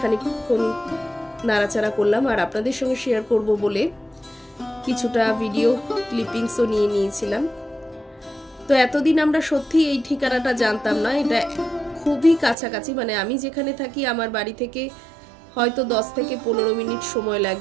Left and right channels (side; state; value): left; drops out; at 12.6 s